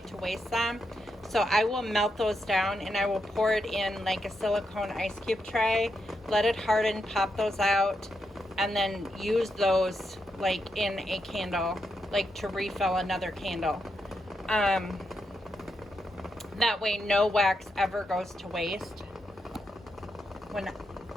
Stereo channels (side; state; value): both; normal; correlation 0.83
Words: to waste them, so I will melt those down and I will pour it in like a silicone ice cube tray, let it harden, pop those out, and then use those like in a candle, like to refill another candle. That way no wax ever goes to waste,